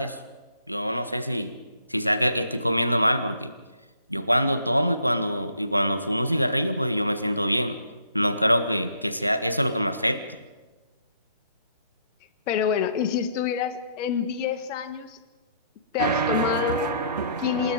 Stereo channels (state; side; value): inverted; both; correlation -0.66